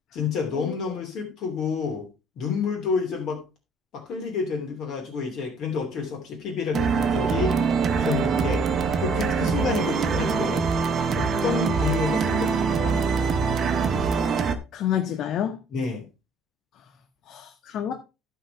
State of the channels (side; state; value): both; normal; correlation 0.59